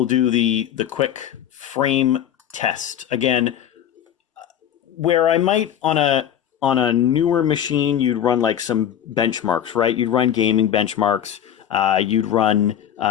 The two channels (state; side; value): quieter; right; 10.1 dB